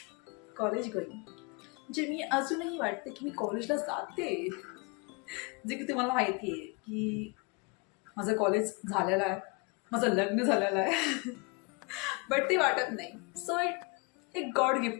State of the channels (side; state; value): right; quieter; 29.9 dB